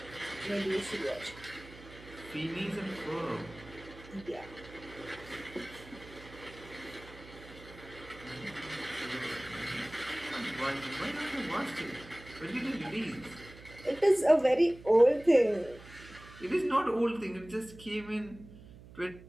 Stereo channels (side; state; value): right; noise; hum, 18 dB below the sound